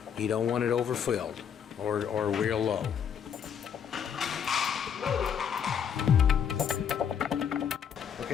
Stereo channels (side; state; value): right; quieter; 8.0 dB